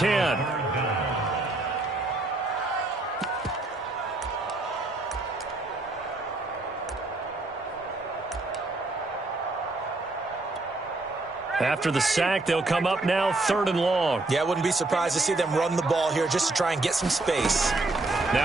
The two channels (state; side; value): quieter; left; 3.0 dB